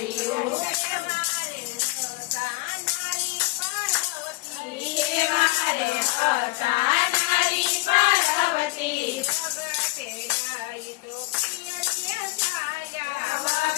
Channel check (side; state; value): right; quieter; 22.4 dB